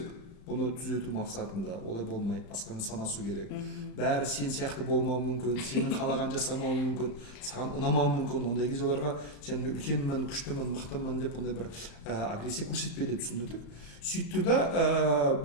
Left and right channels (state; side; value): late; right; 35 ms